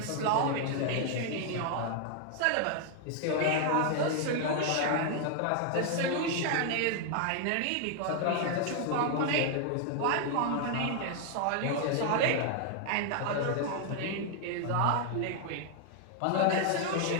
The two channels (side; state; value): both; different; correlation 0.00